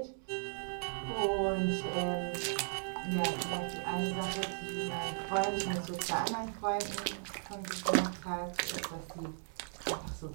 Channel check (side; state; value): left; silent; digital silence